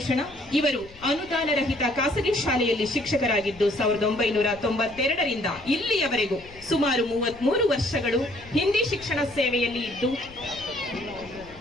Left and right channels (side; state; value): left; noise; rumble, 21 dB below the sound